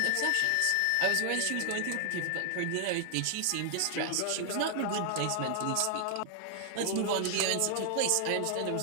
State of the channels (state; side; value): different; both; correlation 0.00